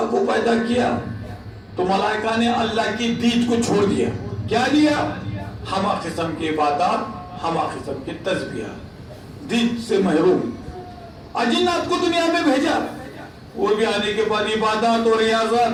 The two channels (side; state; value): both; identical; correlation 1.00